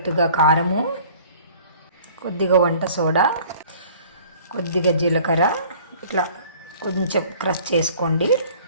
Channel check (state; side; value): inverted; both; correlation -0.51